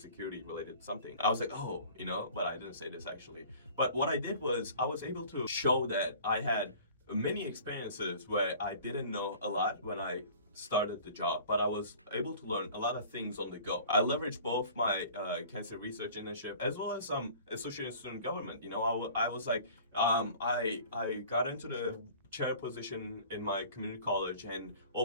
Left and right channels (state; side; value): inverted; both; correlation -0.46